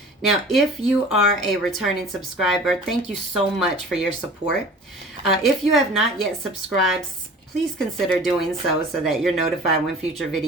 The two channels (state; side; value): normal; both; correlation 0.43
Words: Now, if you are a returning subscriber, thank you so much for your support. If you have not yet subscribed, please consider doing so that you're notified when future